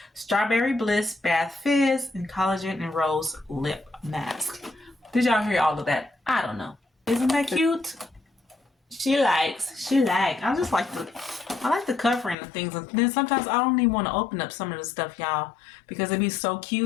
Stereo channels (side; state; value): right; drops out; at 12.4 s